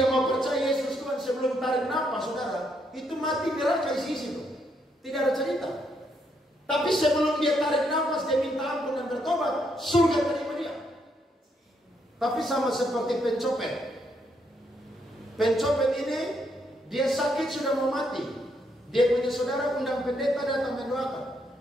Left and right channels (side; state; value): both; normal; correlation 0.75